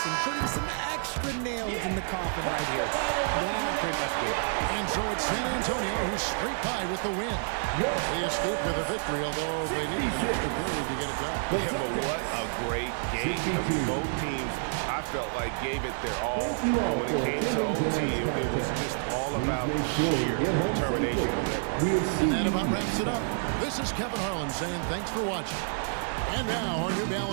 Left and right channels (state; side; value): silent; left; digital silence